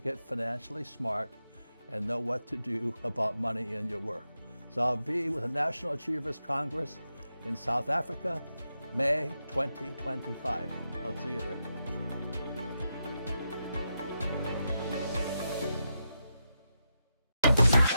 financially smart and know what to do about money in your work. So I'll be with the National Achievers Congress in South Africa, May 2025. I'll see you there.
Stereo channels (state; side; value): inverted; both; correlation -0.87